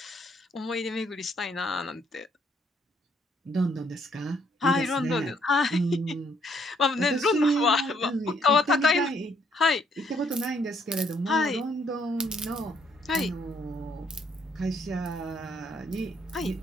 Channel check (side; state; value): both; normal; correlation 0.69